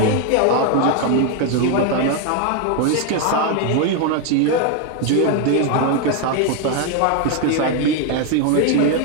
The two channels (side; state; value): both; different; correlation 0.01